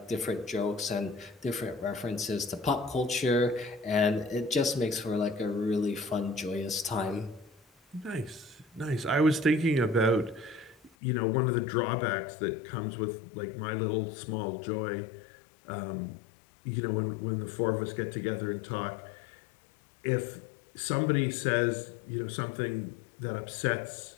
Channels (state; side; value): drops out; right; at 10.9 s